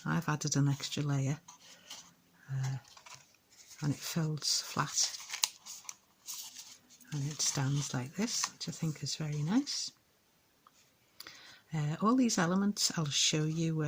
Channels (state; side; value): identical; both; correlation 1.00